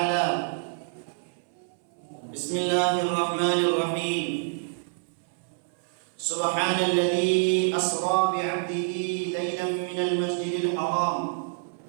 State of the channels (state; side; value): silent; left; 60 dB below the other